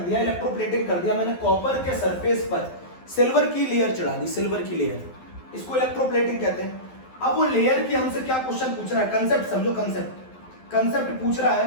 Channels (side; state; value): right; late; 12 ms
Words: इलेक्ट्रोप्लेटिंग कर दिया। मैंने कॉपर के सरफेस पर सिल्वर की लेयर चढ़ा दी, सिल्वर की लेयर, इसको इलेक्ट्रोप्लेटिंग कहते हैं। अब वो लेयर की हमसे क्या क्वेश्चन पूछ रहा है, कंसेप्ट समझो, कंसेप्ट पूछ रहा है